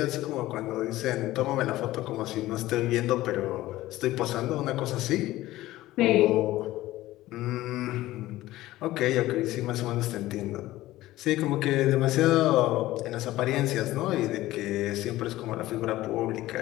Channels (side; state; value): right; quieter; 16.4 dB